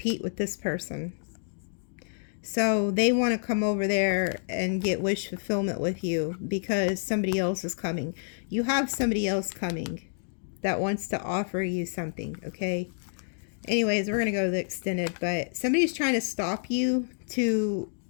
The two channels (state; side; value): silent; right; digital silence